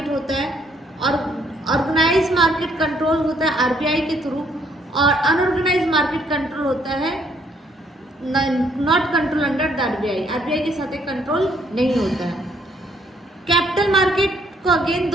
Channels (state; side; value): normal; both; correlation 0.67